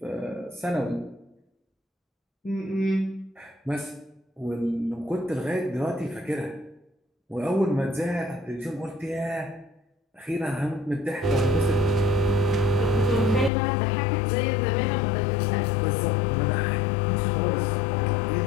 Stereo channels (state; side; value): drops out; right; at 13.5 s